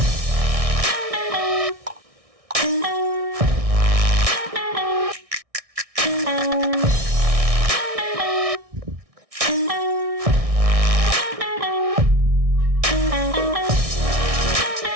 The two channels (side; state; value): left; late; 1.6 ms